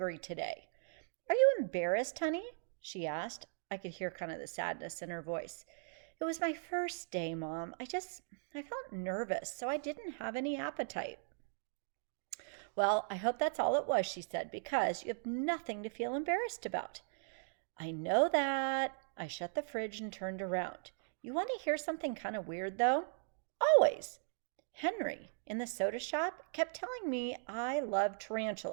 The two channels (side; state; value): left; silent; digital silence